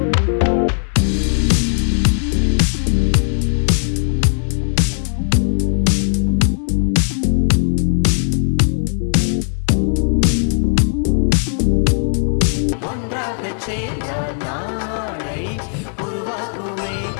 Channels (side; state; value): right; silent; 63 dB below the other